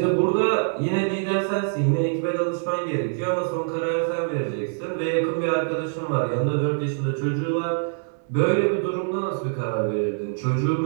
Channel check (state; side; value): silent; left; 62 dB below the other